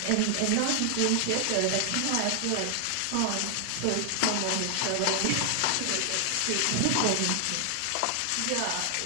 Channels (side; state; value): both; different; correlation 0.00